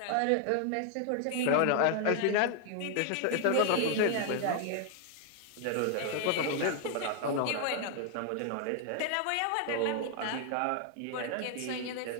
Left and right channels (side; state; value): both; different; correlation 0.00